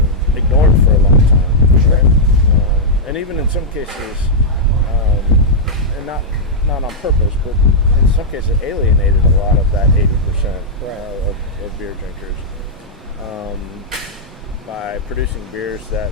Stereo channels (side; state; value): both; normal; correlation -0.07